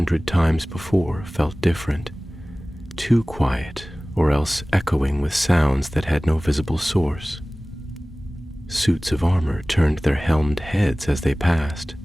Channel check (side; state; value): both; normal; correlation 0.98